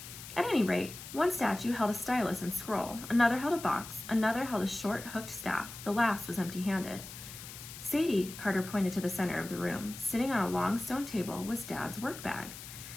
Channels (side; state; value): left; noise; hiss, 13 dB below the sound